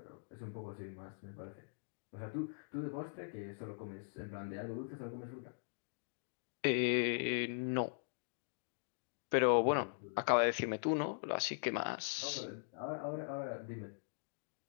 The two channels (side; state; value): right; silent; digital silence